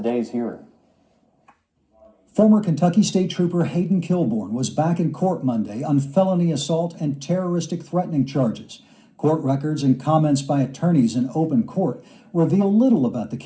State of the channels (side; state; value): both; identical; correlation 1.00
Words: hearing. Former Kentucky State Trooper Hayden Kilborn was back in court Monday on felony assault and terroristic threatening charges. Court records and comments by attorneys in open court reveal little about the